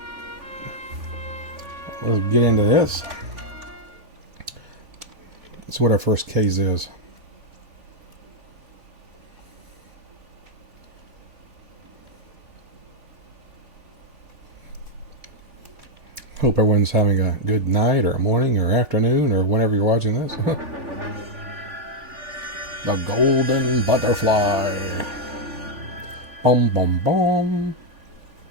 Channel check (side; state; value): left; late; 3.5 ms